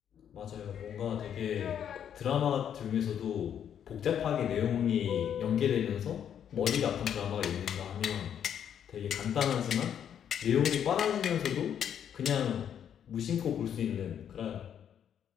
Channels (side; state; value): right; quieter; 9.0 dB